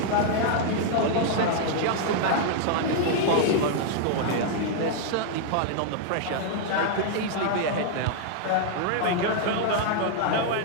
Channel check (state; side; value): different; both; correlation -0.01